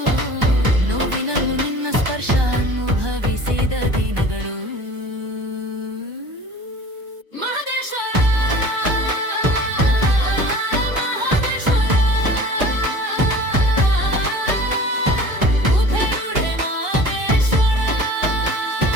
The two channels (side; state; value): left; late; 1.2 ms